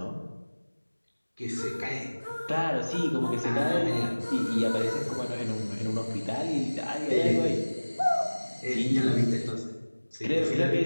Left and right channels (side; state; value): both; inverted; correlation -1.00